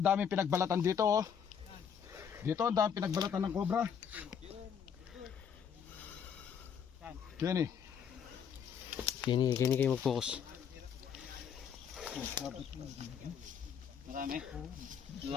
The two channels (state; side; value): quieter; right; 7.7 dB